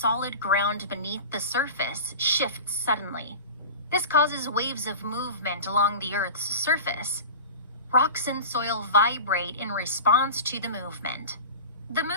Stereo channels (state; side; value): inverted; both; correlation -0.33